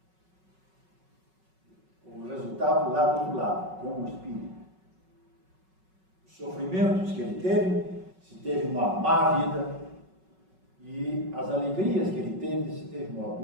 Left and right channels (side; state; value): left; late; 5.3 ms